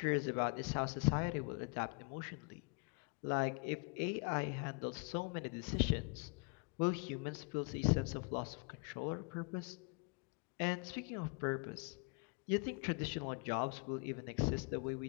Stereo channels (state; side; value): quieter; right; 34.8 dB